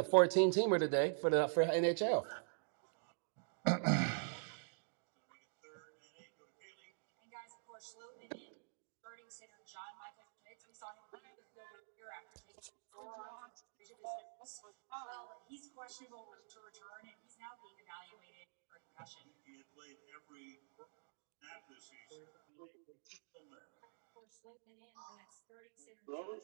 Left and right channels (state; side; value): silent; left; digital silence